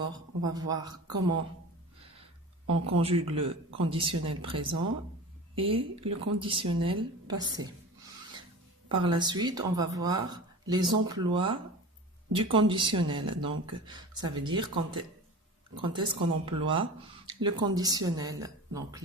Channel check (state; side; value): normal; both; correlation 0.34